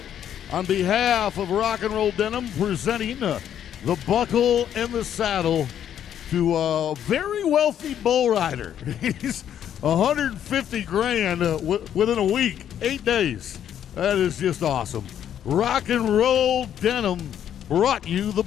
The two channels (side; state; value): right; quieter; 9.9 dB